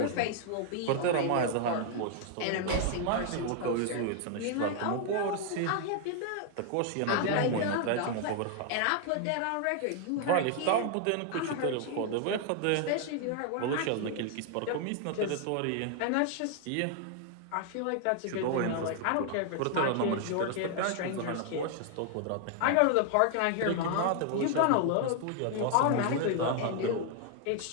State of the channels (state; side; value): different; both; correlation 0.00